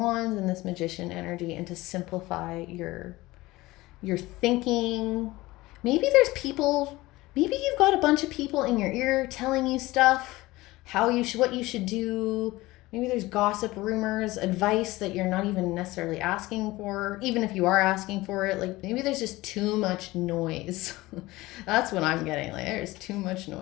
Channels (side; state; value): right; quieter; 19.4 dB